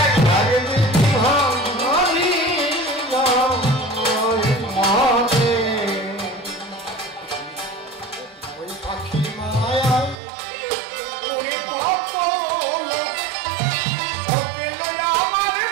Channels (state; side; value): drops out; left; at 10.2 s